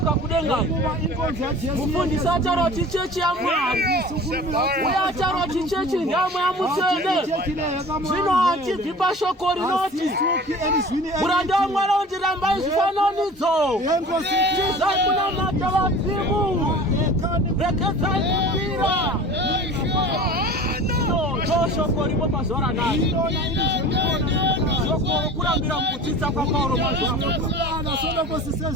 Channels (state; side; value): normal; both; correlation 0.40